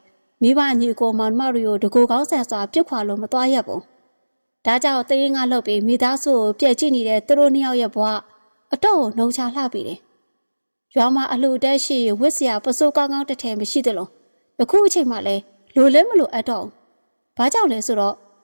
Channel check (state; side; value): inverted; both; correlation -1.00